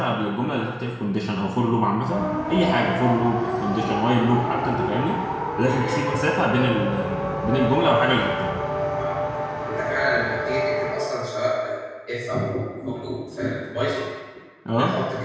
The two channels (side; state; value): both; identical; correlation 1.00